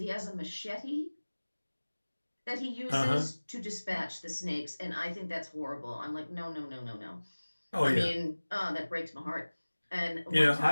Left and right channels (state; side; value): inverted; both; correlation -1.00